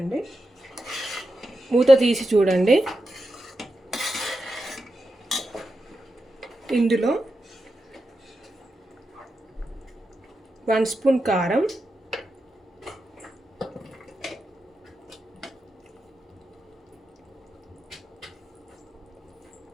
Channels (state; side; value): normal; both; correlation 0.89